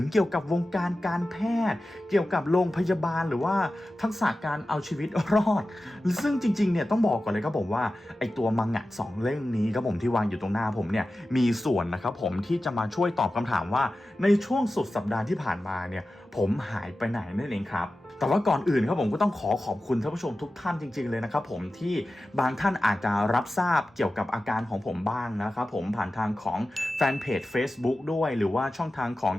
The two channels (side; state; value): both; normal; correlation 0.94